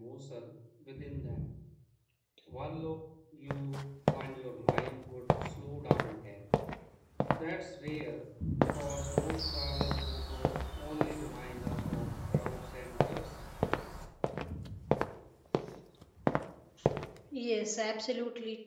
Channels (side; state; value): both; identical; correlation 1.00